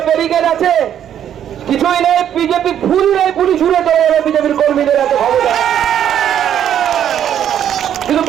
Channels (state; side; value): quieter; left; 9.9 dB